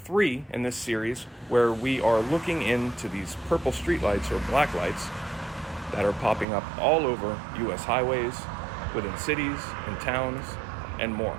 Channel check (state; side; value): drops out; left; at 6.5 s